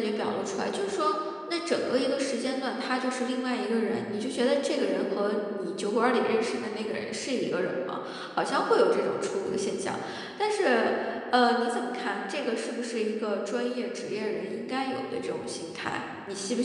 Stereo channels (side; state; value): both; identical; correlation 1.00